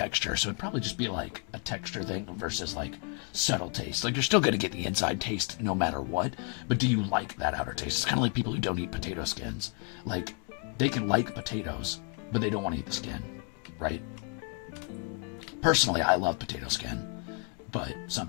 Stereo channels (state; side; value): quieter; right; 35.2 dB